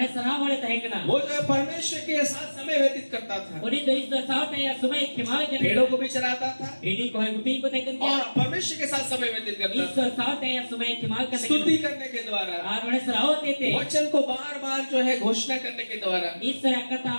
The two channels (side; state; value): both; inverted; correlation -1.00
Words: सराह वाले तहे कना वो जो है परमेश्वर के साथ समय व्यतीत करता था। उनी तो इस साथ या समय खिमावे के भेड़ों को भी चराता था इडी को है गुपी को देखन और परमेश्वर के साथ समय व्यतीत करता इस था साथ या समय खिमावे के स्तुति करने के द्वारा और ओने सराह होते थे वचन को बार-बार जो है घोषणा करने के द्वारा। इस तरह कथा